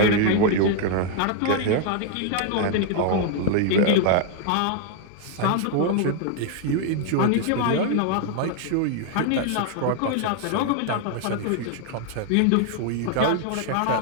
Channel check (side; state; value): both; different; correlation 0.00